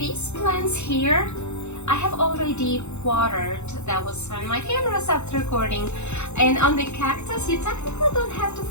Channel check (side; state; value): right; late; 0.82 ms